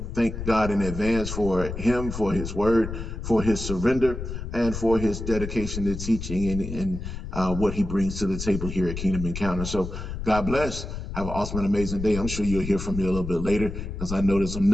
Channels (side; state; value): left; noise; rumble, 7 dB below the sound